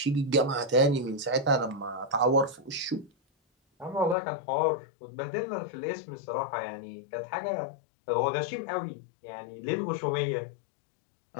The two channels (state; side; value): drops out; right; at 4.2 s